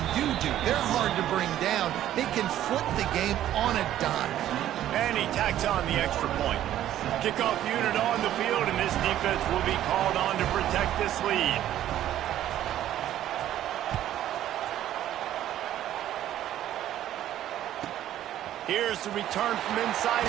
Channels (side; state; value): left; quieter; 12.3 dB